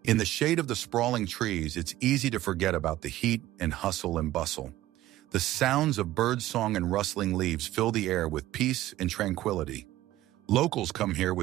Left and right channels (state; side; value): quieter; left; 15.2 dB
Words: In the shade of the sprawling trees, it's easy to forget about the heat and hustle and bustle. The sounds of birdsong and rustling leaves fill the air with peace and tranquility. Locals come here